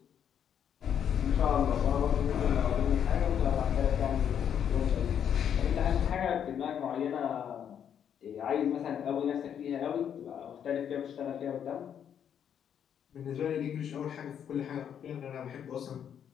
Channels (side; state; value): right; quieter; 8.7 dB